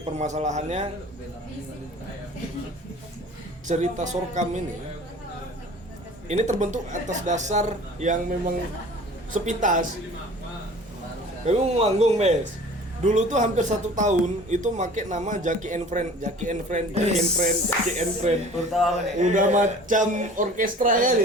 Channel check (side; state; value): both; normal; correlation 0.45